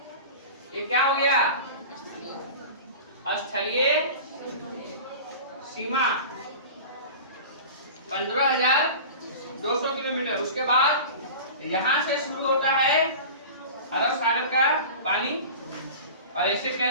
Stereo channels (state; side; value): inverted; both; correlation -0.35